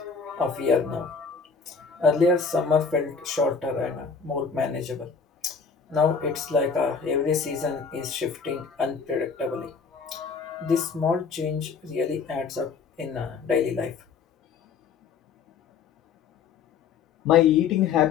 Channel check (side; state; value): right; quieter; 5.6 dB